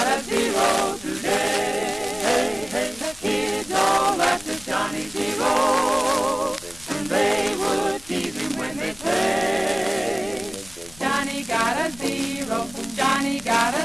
a zero today. The kids all laughed at Johnny Zero, and they would tease him when they say, Johnny got a zero, Johnny got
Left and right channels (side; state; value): left; noise; rumble, 21 dB below the sound